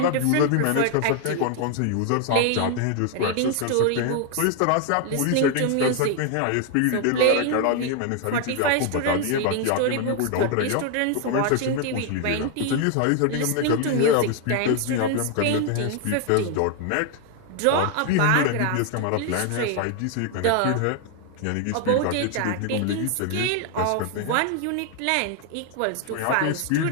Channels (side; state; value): both; different; correlation 0.00